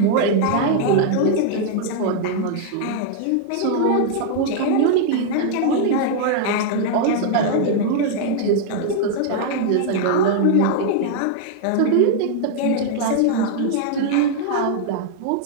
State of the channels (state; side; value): different; both; correlation 0.00